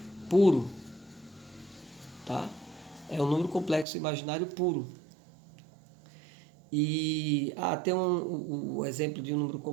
puro, tá? É um número complexo imaginário puro. E tem o exemplo de um número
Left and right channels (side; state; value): left; drops out; at 3.9 s